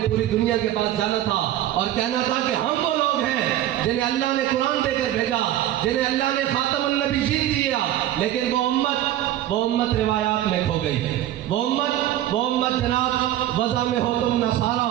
پوری دنیا کے پاس جانا تھا اور کہنا تھا کہ ہم وہ لوگ ہیں جنہیں اللہ نے قرآن دے کر بھیجا، جنہیں اللہ نے خاتم النبیین دیا، لیکن وہ امت روایات میں کھو گئی، وہ امت جناب وضع میں ہو تم نصارا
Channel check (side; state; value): left; quieter; 12.9 dB